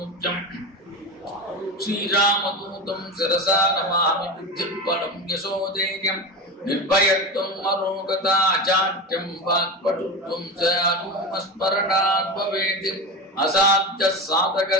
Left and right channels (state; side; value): normal; both; correlation 0.23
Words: ஸ்ரீராமதூதம் சிரசா நமாமி புத்திர்பலம் யசோதேயம் நிர்பயத்வம் அரோகதா சாட்யம் வாக்படுத்வம் ச அனுமஸ்மரணாத் பவேத். அசாத்ய சாதக